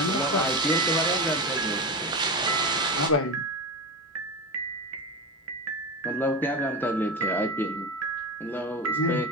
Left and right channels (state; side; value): normal; both; correlation 0.22